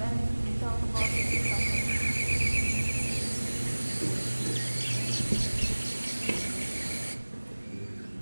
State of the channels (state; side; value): inverted; both; correlation -1.00